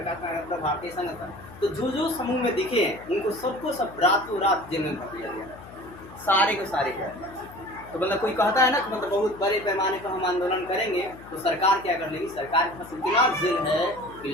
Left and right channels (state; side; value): noise; left; hum, 18 dB below the sound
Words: नारायण का भारतीय संघ था, तो जो समूह में दिखे हैं उनको सबको सब रातों रात जेल में भर दिया गया, सारे को सारे को। तो मतलब कोई कहता है ना कि मतलब बहुत बड़े पैमाने पर हम आंदोलन करेंगे तो सरकार क्या कर लेगी, सरकार के पास इतना जेल है कि